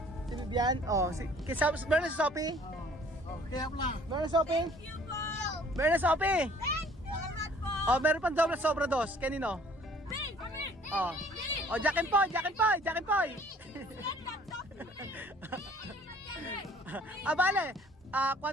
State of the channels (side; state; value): both; normal; correlation 0.55